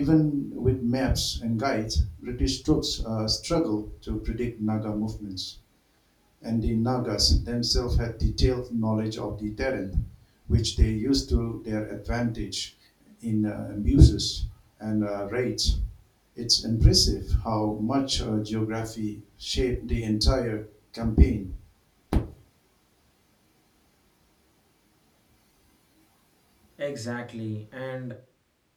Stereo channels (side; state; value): both; identical; correlation 1.00